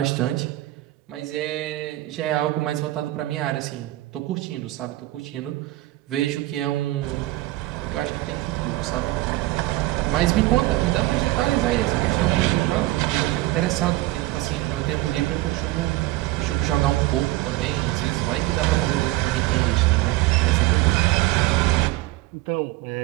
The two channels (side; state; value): left; quieter; 17.8 dB